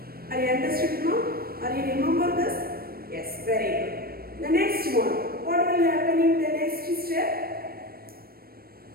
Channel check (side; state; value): left; late; 0.44 ms